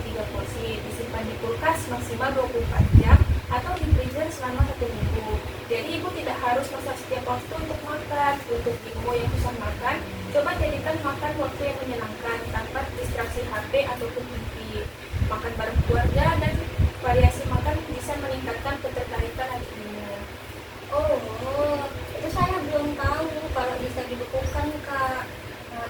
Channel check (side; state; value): both; identical; correlation 1.00